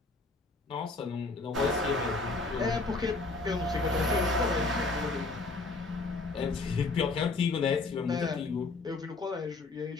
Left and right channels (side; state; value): right; quieter; 3.6 dB